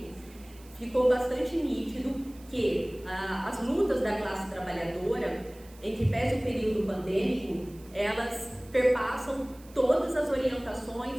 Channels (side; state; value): right; noise; hiss, 24 dB below the sound